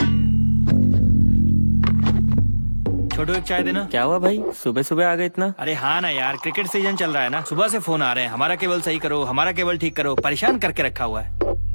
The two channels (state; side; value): inverted; both; correlation -1.00